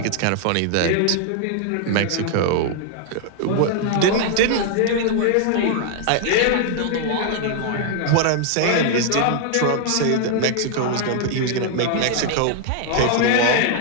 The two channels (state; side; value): different; both; correlation 0.00